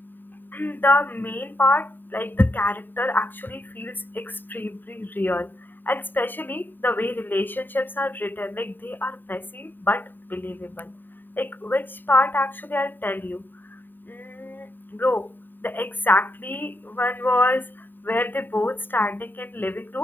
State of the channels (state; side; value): late; right; 0.092 ms